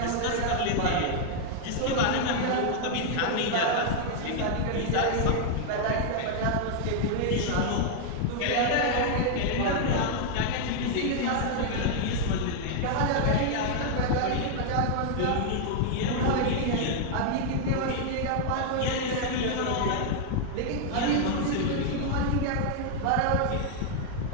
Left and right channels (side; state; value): both; different; correlation 0.00